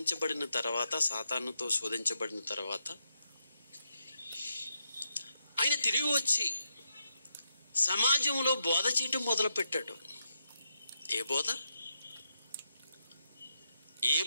తర్వాత, సాతానుతో శోధించబడిన తర్వాత ఆయన తిరిగి వచ్చి సమాజంలో బోధ చేయటం మొదలుపెట్టాడు. ఏ బోధ? ఏ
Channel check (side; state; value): both; inverted; correlation -0.82